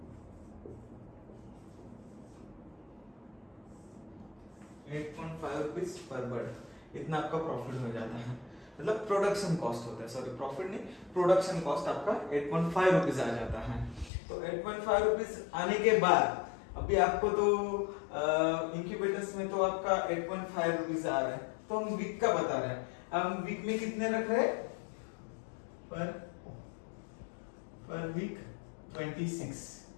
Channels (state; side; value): drops out; right; at 14.1 s